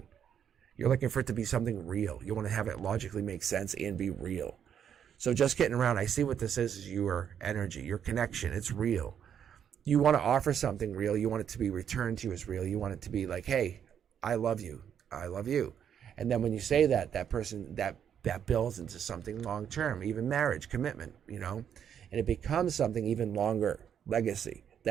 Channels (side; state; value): left; quieter; 8.6 dB